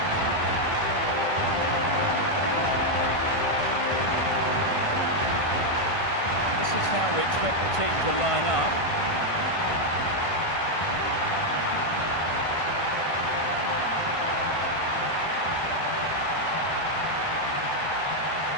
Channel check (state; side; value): late; right; 1.5 ms